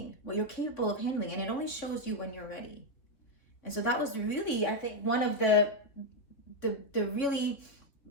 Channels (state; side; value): late; right; 3.3 ms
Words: what you're capable of handling, and it only shows you when you're ready. And so that was really, I think, one of the really